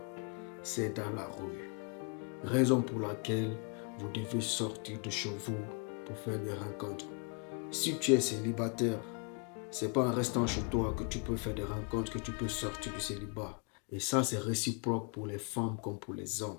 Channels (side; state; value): right; quieter; 37.3 dB